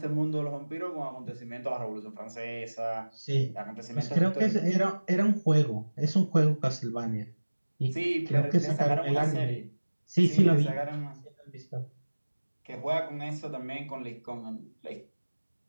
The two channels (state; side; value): inverted; both; correlation -1.00